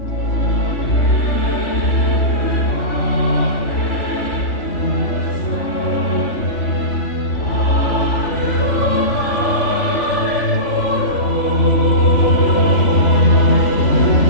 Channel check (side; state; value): right; late; 3.4 ms